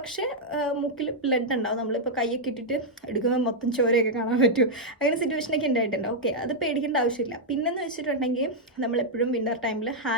മൂക്കിൽ ബ്ലഡ് ഉണ്ടാവും. നമ്മളിപ്പോൾ കൈയൊക്കെ ഇട്ടിട്ട് എടുക്കുമ്പോൾ മൊത്തം ചോരയൊക്കെ കാണാൻ പറ്റും. അങ്ങനെ സിറ്റുവേഷനൊക്കെ ഉണ്ടായിട്ടുണ്ട്. ഓക്കെ, അത് പേടിക്കേണ്ട ആവശ്യമില്ല. പിന്നെന്ന് വെച്ചിട്ടുണ്ടെങ്കിൽ നമ്മളെപ്പോഴും വിൻ്റർ ടൈമിൽ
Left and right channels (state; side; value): normal; both; correlation -0.04